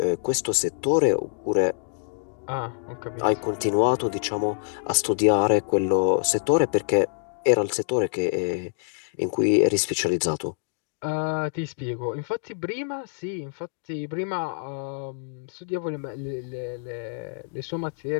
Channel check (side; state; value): right; silent; digital silence